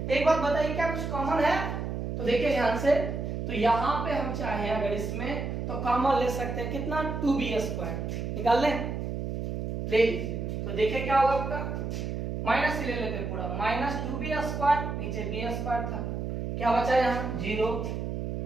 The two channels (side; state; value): right; noise; hum, 4 dB below the sound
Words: एक बात बताइए क्या कुछ कॉमन है, तो देखिए ध्यान से, तो यहाँ पे हम चाहें अगर इसमें तो कॉमन ले सकते हैं कितना 2b स्क्वायर निकाल लें, ले लीजिए। तो देखिए क्या होगा आपका, माइनस से ले लेते हैं पूरा, माइनस 2b स्क्वायर नीचे b स्क्वायर था, क्या बचा यहाँ 0।